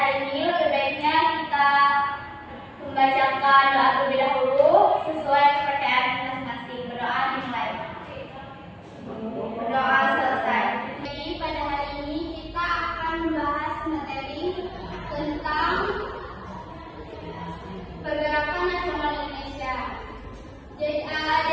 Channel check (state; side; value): identical; both; correlation 1.00